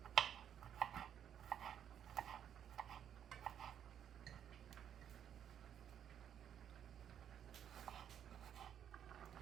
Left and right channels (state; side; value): quieter; left; 9.2 dB